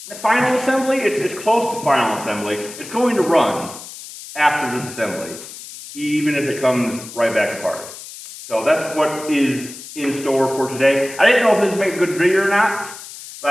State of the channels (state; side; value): noise; left; hiss, 14 dB below the sound